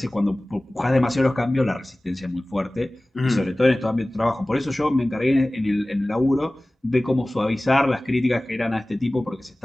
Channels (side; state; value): both; normal; correlation 0.98